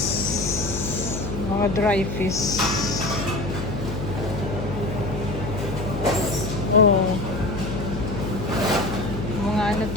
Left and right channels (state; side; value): noise; left; hum, 6 dB below the sound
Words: mga dry fish. Oh. Mga ano